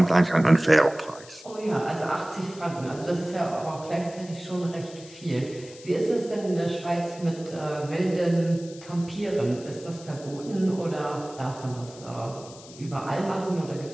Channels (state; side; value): noise; left; hiss, 19 dB below the sound